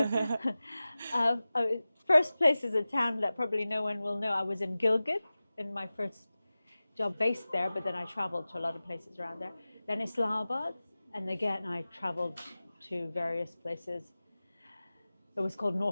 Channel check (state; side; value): inverted; both; correlation -0.97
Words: So, first place is a town that probably no one will know. I was in Gilgit in my first job based there, but then I traveled to a lot of places around there. Then Islamabad, and again I traveled to various places. It was called